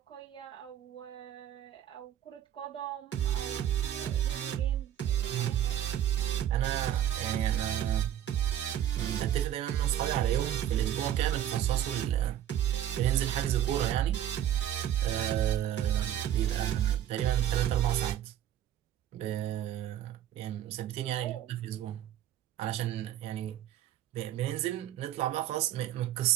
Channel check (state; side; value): quieter; left; 11.3 dB